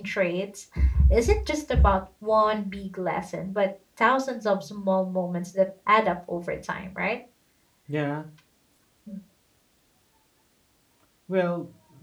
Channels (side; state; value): both; identical; correlation 1.00